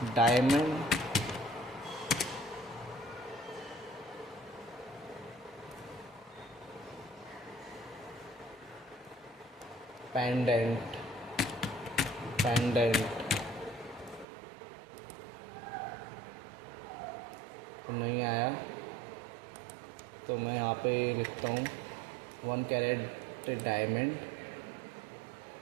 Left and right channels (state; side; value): drops out; left; at 14.2 s